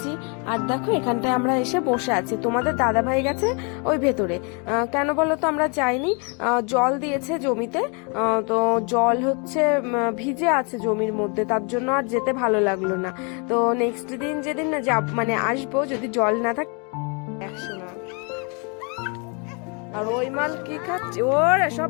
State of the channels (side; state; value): right; quieter; 34.8 dB